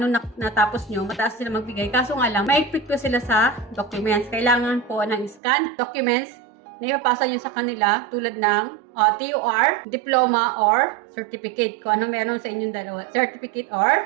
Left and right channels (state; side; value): drops out; left; at 5.4 s